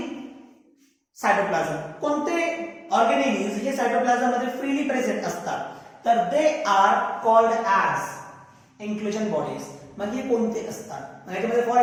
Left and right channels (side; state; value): both; identical; correlation 1.00